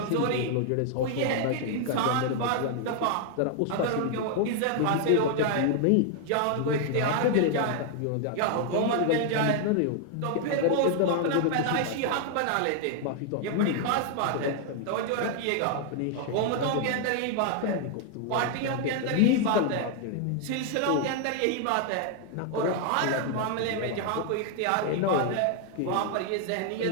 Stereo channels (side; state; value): both; different; correlation 0.00